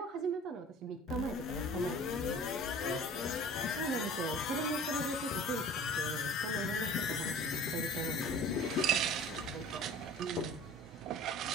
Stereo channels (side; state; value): both; normal; correlation 0.44